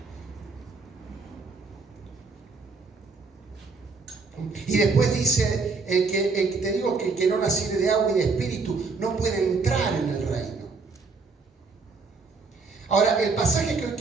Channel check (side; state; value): left; quieter; 4.3 dB